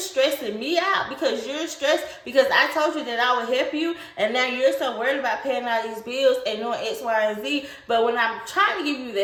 me out because you're stressed because I told you that I would help you, and now you're so worried about paying all these bills and doing X, Y, and Z. But when I'm trying to give you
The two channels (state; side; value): identical; both; correlation 1.00